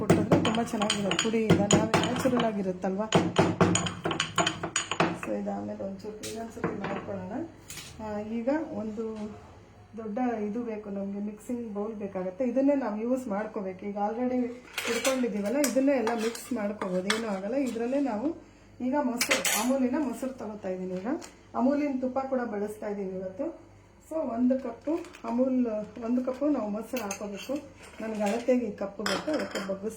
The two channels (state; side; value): identical; both; correlation 1.00